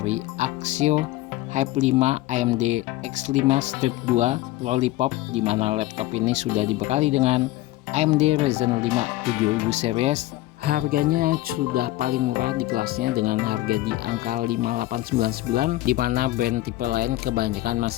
Axio Hype 5 AMD X5 Strip 2 Lollipop, di mana laptop ini sudah dibekali dengan AMD Ryzen 5 7000 series. Harganya sudah paling murah di kelasnya dengan harga di angka 5899, di mana brand tipe lain kebanyakan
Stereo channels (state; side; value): quieter; right; 16.8 dB